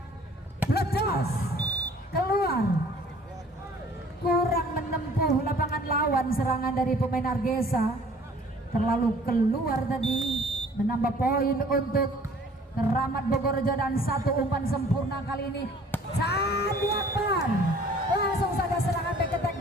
ledos keluar, kurang menempuh lapangan lawan. Serangan dari pemain Argesa terlalu keluar tadi, menambah poin untuk Keramat Bogorrejo, dan 1 umpan sempurna kali ini Sandi Akbar. Langsung saja serangan back attack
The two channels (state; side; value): normal; both; correlation 0.53